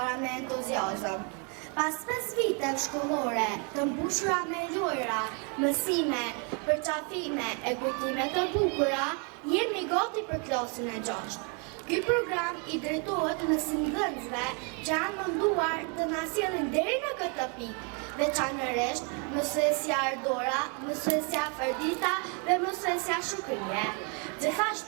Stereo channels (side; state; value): left; quieter; 35.4 dB